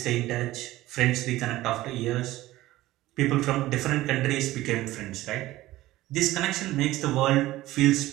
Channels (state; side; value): quieter; left; 16.6 dB